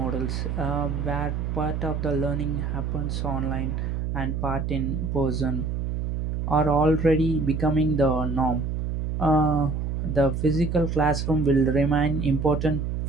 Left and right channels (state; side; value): noise; right; hum, 2 dB below the sound